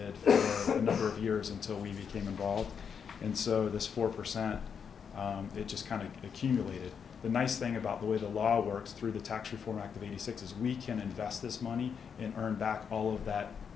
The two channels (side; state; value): right; quieter; 6.9 dB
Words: for a number of years until we became involved, and so this 4%, it just kind of accumulated. The nice thing about the way the law works through the Tax Reform Act of '86 is we can invest this money and earn back all of that